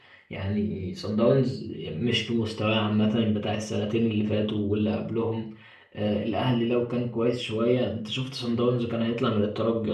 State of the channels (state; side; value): identical; both; correlation 1.00